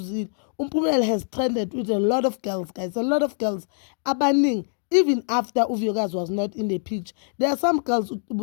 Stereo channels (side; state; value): right; silent; 62 dB below the other